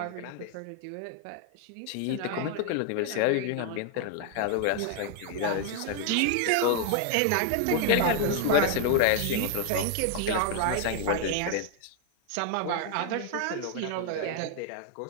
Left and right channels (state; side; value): different; both; correlation 0.00